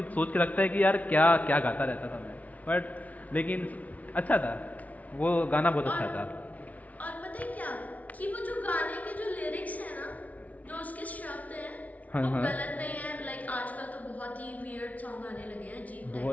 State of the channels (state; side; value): late; right; 0.070 ms